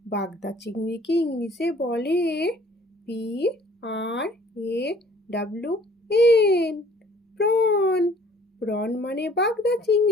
বাগদা চিংড়িকে ইংলিশে বলে PRAWN, প্রন। প্রন মানে বাগদা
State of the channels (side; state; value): both; normal; correlation 0.55